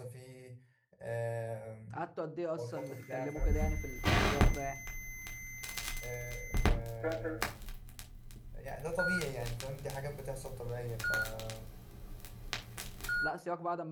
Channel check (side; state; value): both; identical; correlation 1.00